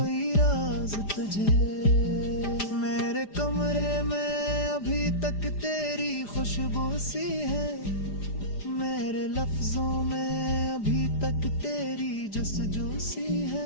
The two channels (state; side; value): late; right; 4.9 ms